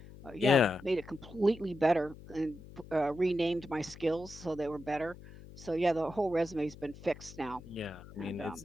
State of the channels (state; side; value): noise; left; hum, 17 dB below the sound